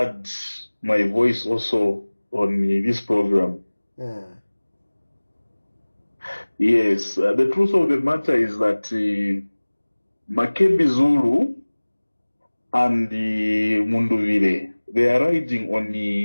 my voice also on this program. Yeah. Yes, the truth of the matter is that Makebi Zulu and the Munduvile, they are riding on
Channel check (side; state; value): both; inverted; correlation -1.00